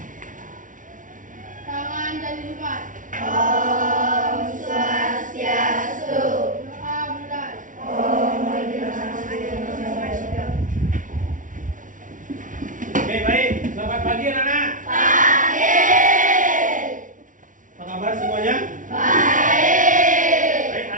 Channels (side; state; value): left; late; 0.38 ms